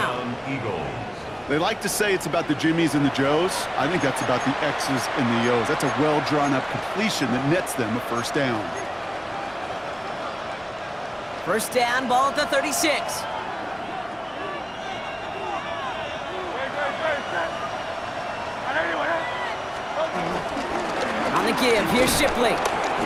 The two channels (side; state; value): both; identical; correlation 1.00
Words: They like to say it's about the Jimmies and the Joes. I think that's about the X's and the O's. That's a well-drawn-up completion that nets them a 1st down. 1st down, ball at the 36. On the give, here's Shipley.